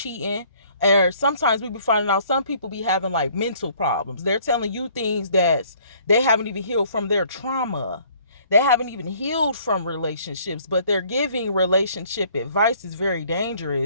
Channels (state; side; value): inverted; both; correlation -0.59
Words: or sometimes we be finding out some people be having like mental problems. They're telling you things that they haven't even healed from their trauma. They haven't even healed from relationships, but they're giving relationship advice is very